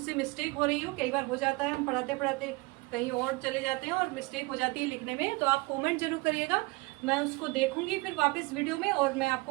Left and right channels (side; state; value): left; quieter; 24.2 dB